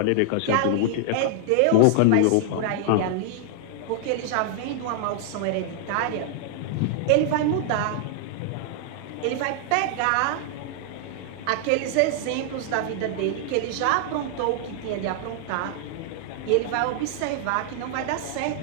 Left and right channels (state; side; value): different; both; correlation -0.01